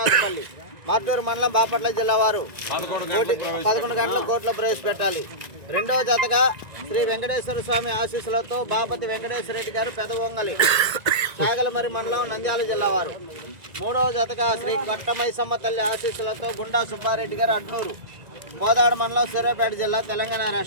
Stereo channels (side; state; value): left; late; 1.9 ms